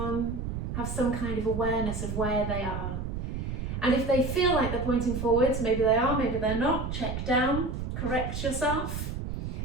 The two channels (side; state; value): right; noise; rumble, 4 dB below the sound